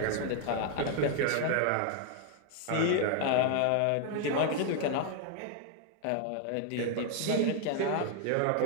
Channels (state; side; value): different; both; correlation 0.00